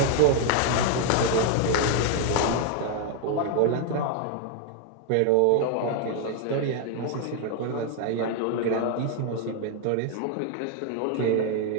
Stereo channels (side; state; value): both; different; correlation 0.00